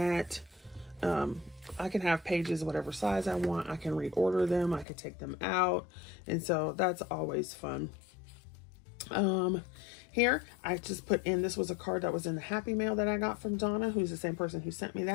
I can have pages whatever size I want. I can reorder them. I can take them out. And so that's always fun. Here, I just put in, this was a card that was in the Happy Mail that I got from Donna, who's the same person who sent me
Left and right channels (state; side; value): drops out; right; at 4.9 s